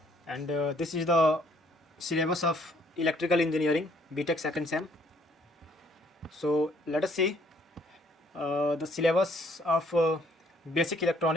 and this is the syllabus of electrical engineering BTech second sem. So let us see the syllabus of basic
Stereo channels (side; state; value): both; normal; correlation 0.64